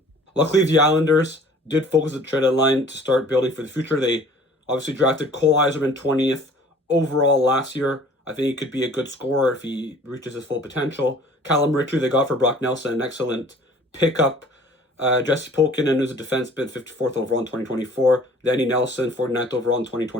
Luckily, the Islanders did focus the trade deadline to start building for the future. They obviously drafted Cole Eiserman 20th overall last year. I think he could be a good scorer if he reaches his full potential. Callum Ritchie they got for Brock Nelson, an excellent pickup. Jesse Pulkkinen, who's a defenseman, 54th overall in 2024. Danny Nelson, 49th overall in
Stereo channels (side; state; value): both; normal; correlation 0.51